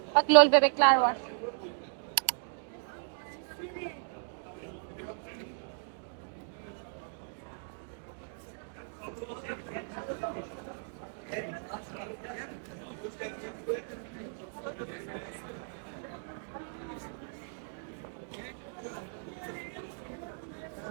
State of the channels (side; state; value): left; silent; digital silence